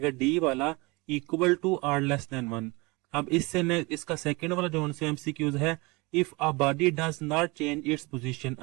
डी वाला equal to R less than 1। अब इससे इसका सेकेंड वाला जो से एमसीक्यूज है if a body does not change its position.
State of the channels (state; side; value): quieter; left; 25.5 dB